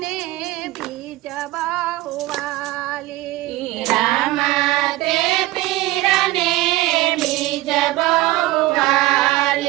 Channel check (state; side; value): quieter; left; 18.1 dB